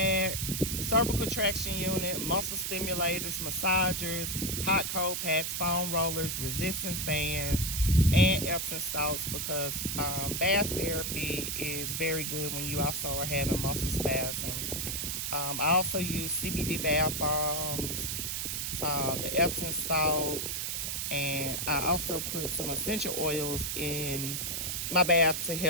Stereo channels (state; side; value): noise; right; hiss, 2 dB below the sound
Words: cervical traction unit, muscle stimulators, massagers, hot cold packs, foam rollers, resistance bands, and Epsom salts because bath therapy is very good when you also are having muscle spasms. I also use CBD bath bombs, the Epsom salt, and I also put some essential oils in my bath to